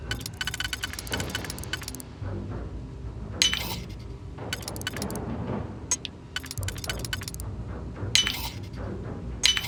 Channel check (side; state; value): both; identical; correlation 1.00